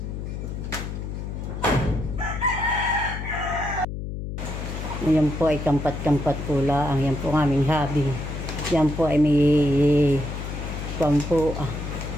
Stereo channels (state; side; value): noise; left; hum, 6 dB below the sound